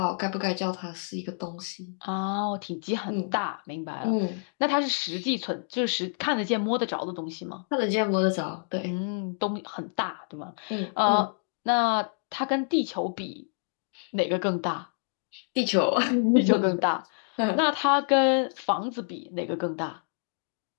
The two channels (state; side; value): silent; right; digital silence